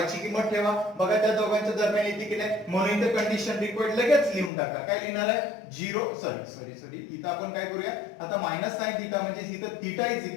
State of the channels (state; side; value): drops out; right; at 4.5 s